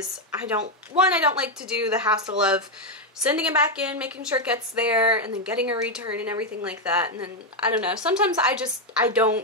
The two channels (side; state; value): both; normal; correlation 0.04